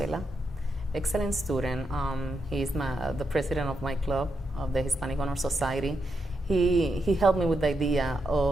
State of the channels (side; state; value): both; normal; correlation 0.83